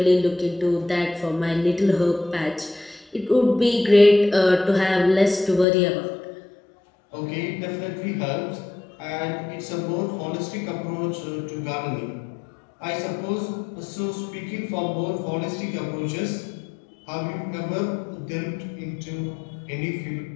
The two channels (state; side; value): drops out; right; at 5.7 s